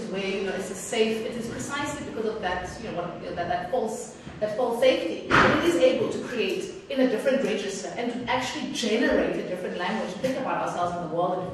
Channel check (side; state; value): both; identical; correlation 1.00